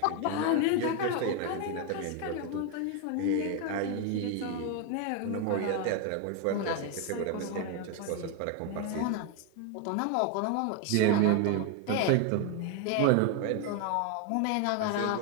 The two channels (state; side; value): different; both; correlation 0.01